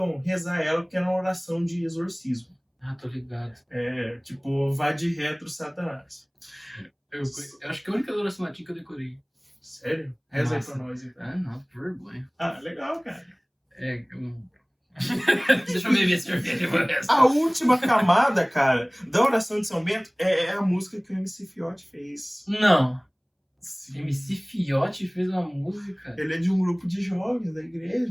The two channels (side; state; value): both; identical; correlation 1.00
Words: rezar ela porque é uma oração de exorcismo. Ah, tô ligado. É, tipo, vai de retro Satanás. Eu acho que é a única oração latim que eu decorei. Sério? Reza aí Nossa. pra nós, então. Ah, não, por vergonha. Ah, legal, cara. Deixa eu beber a cerveja por essa. A última camada, cara, da oração de São Bento é a música que o MC Fiote fez. Não. Sim. MC Fiote fez uma música. Ele é de um grupo de jovens da